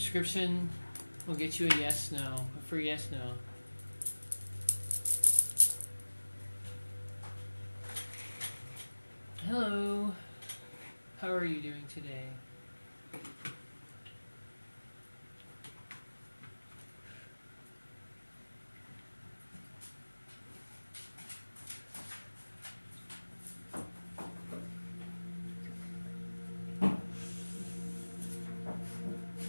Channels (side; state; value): both; inverted; correlation -1.00